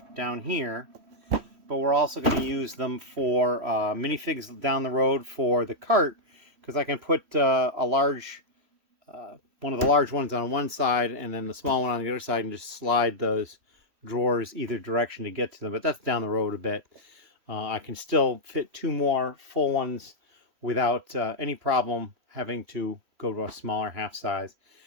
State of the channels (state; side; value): late; left; 3.1 ms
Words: down here. But we're also going to use them for minifigs down the road for the cart. Because I can put one of the large ones on one side and then the small one on the other side and just slide those drawers either direction to get to them. But that's down the road a bit. I can still fit 2 more full ones without any problem having to go to a smaller half size.